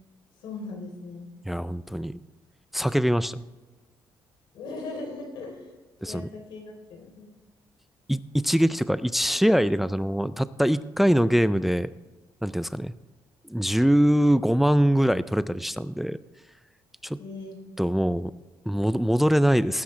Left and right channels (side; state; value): both; normal; correlation 0.98